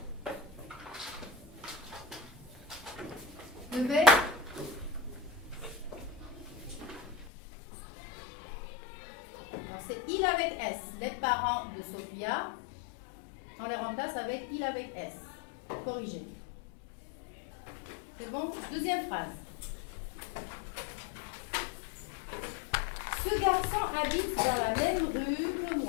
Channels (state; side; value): drops out; right; at 7.3 s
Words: Levez. C'est il avec S. Les parents de Sophia, on les remplace avec il avec S. Corrigé. C'est bon? Deuxième phrase. Ce garçon habite dans la même rue que